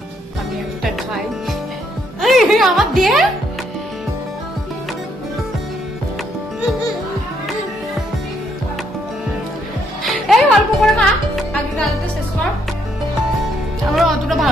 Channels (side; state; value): both; normal; correlation 0.72